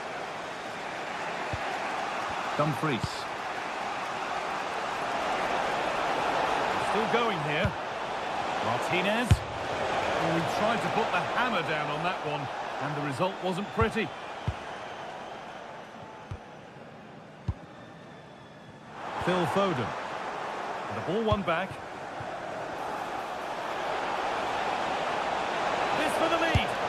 Dumfries. Still going here. Martinez. Oh, he tried to put the hammer down on that one, and the result wasn't pretty. Phil Foden. And the ball won back. This for the lead.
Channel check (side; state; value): both; identical; correlation 1.00